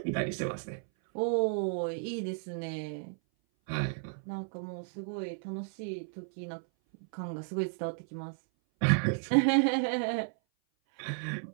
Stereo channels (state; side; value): silent; left; 56 dB below the other